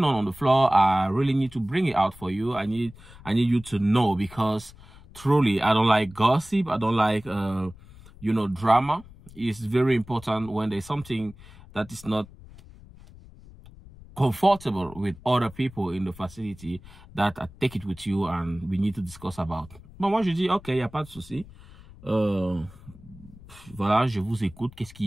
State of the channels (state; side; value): noise; left; rumble, 20 dB below the sound